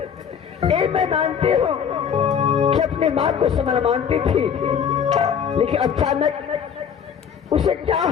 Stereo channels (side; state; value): right; quieter; 7.6 dB